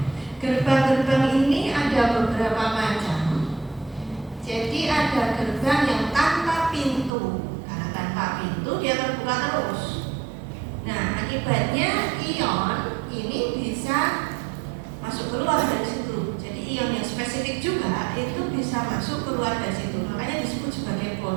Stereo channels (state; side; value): drops out; left; at 7.1 s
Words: gerbang-gerbang ini ada beberapa macam. Jadi ada gerbang yang tanpa pintu. Karena tanpa Akibatnya ion ini bisa masuk keluar dari situ. Jadi ion yang spesifik juga itu bisa masuk keluar dari situ. Makanya disebut sebagai